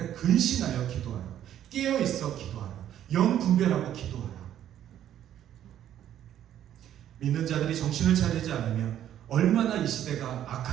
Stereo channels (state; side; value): quieter; left; 11.0 dB